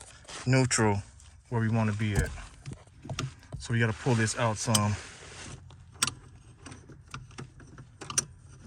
neutral, where we want to be at. So we got to pull this out some.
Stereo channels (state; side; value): identical; both; correlation 1.00